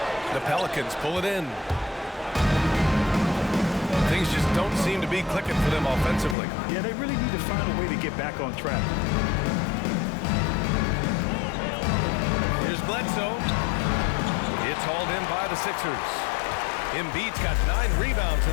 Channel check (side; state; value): right; drops out; at 6.4 s